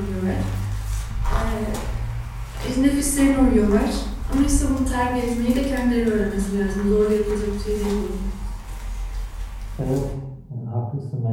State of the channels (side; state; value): both; identical; correlation 1.00